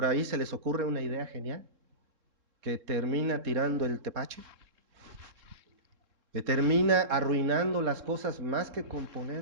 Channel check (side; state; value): left; late; 3.7 ms